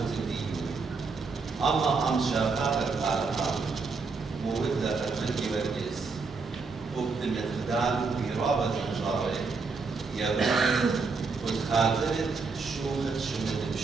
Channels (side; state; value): left; quieter; 4.5 dB